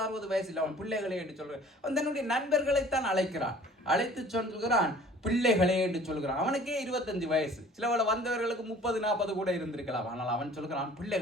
வயசு இல்லை. அவன் பிள்ளைகளை என்று சொல்கிறான். அவன் தன்னுடைய நண்பர்களைத்தான் அழைக்கிறான். அழைத்து சொல்கிறான், பிள்ளைகளே என்று சொல்கிறான். அவனுக்கே 25 வயசு. சிலவள வந்தவர்களுக்கு 30-40 கூட இருந்திருக்கலாம். ஆனால் அவன் சொல்கிறான்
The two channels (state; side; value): normal; both; correlation 0.50